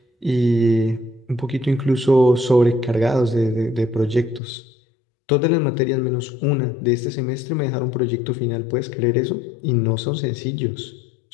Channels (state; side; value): drops out; right; at 4.4 s